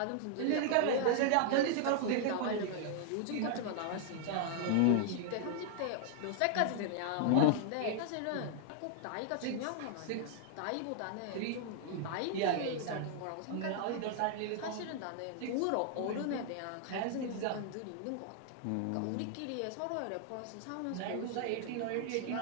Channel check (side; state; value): both; different; correlation -0.01